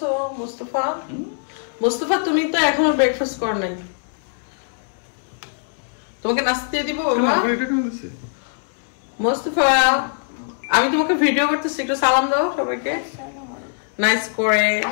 মুস্তাফা, মুস্তাফা তুমি তো এখনো ব্রেকফাস্ট কর নাই। তোমাকে নাস্তা দিয়ে দিব বাবা। মুস্তাফা, আমি তোমাকে ভিডিও করতেছি, একটু সালাম দাও সবাইকে নাইস করে।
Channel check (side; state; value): right; silent; digital silence